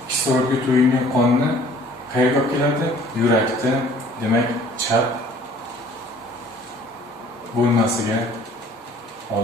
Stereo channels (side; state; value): both; normal; correlation 0.53